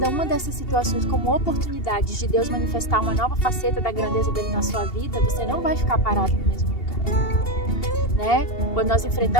uma dessas situações como oportunidades de Deus manifestar uma nova faceta da grandeza dele na sua vida, você não vai ficar parado no mesmo lugar, né? Quando nós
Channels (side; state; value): right; late; 2.8 ms